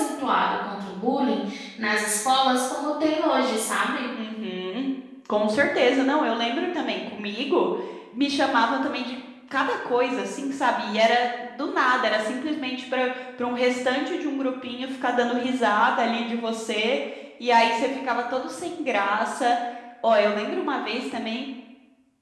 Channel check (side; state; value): both; identical; correlation 1.00